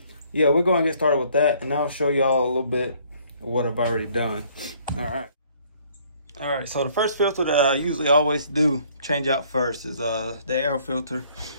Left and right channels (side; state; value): both; inverted; correlation -0.61